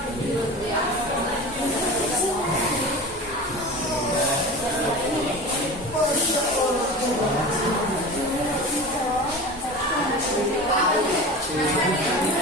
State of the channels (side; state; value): both; normal; correlation 0.32